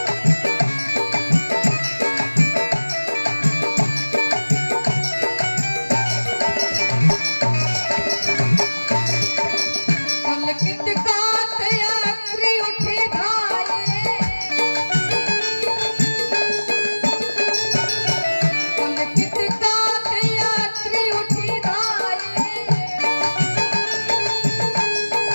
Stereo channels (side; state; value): both; inverted; correlation -1.00